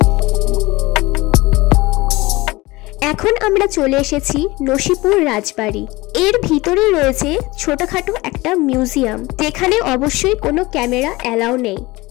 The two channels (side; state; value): right; quieter; 21.3 dB